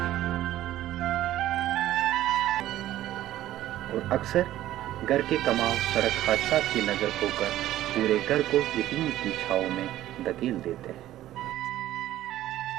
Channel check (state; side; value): quieter; left; 13.8 dB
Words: اور اکثر گھر کے کماؤ سڑک حادثات کی نظر ہو کر پورے گھر کو یتیم کی چھاؤں میں دھکیل دیتے ہیں۔